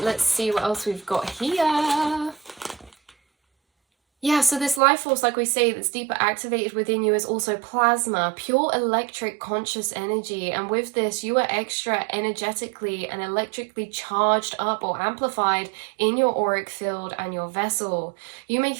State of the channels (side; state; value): left; drops out; at 4.8 s